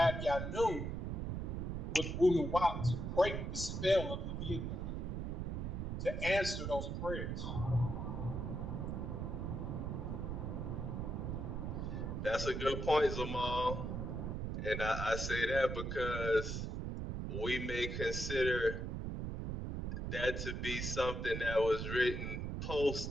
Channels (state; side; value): noise; right; rumble, 3 dB below the sound